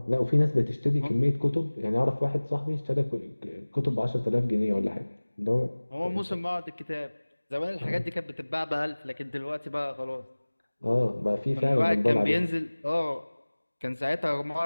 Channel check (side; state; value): both; inverted; correlation -1.00